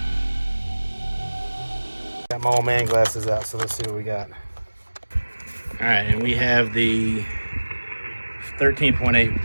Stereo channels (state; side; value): inverted; both; correlation -1.00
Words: Got my old man glasses out, so let's see what we got. All right, and we have the